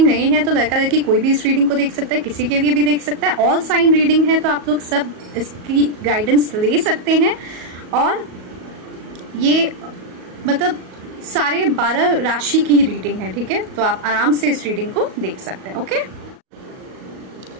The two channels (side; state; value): left; late; 38 ms